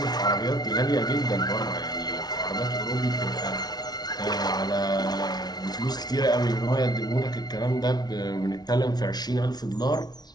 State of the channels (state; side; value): late; right; 0.19 ms